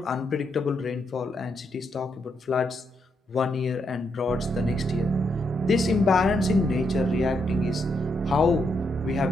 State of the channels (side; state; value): both; normal; correlation 0.79